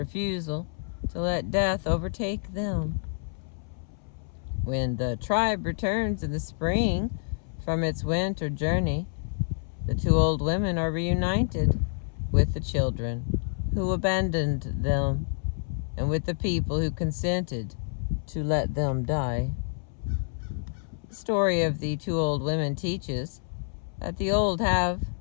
to let death overtake them. When the tribe returns in the spring from its winter journey, the two old women are reunited with the children who abandoned them and with the people who consented to let them die. The story of the two old women teaches that the old have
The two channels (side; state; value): right; silent; 59 dB below the other